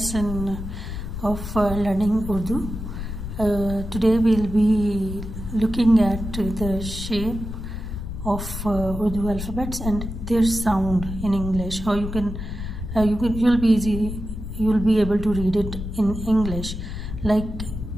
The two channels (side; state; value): left; noise; rumble, 7 dB below the sound